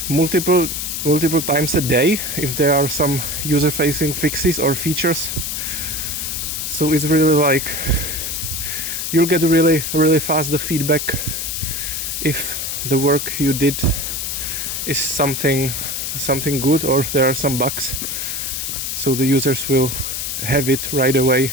multiple times a day if there are some user-facing fixes or features. So it's really like you'll get really fast the feedback if the work you did is something good or there are some bugs. So the users will have it right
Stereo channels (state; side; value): noise; left; hiss, 3 dB below the sound